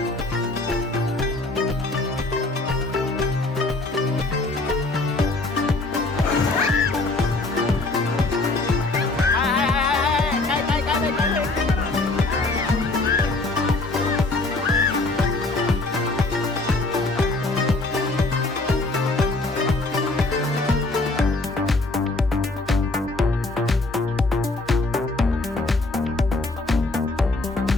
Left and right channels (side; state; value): right; quieter; 3.1 dB